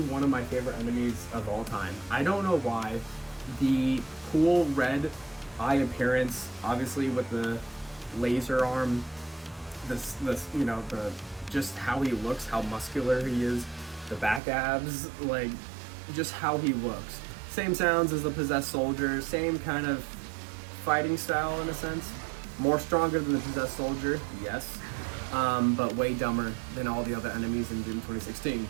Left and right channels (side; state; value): left; drops out; at 14.4 s